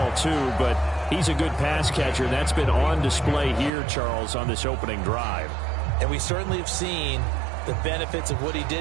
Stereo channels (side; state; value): left; drops out; at 3.7 s